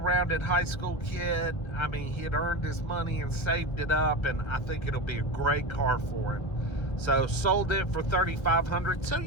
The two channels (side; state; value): right; late; 1.7 ms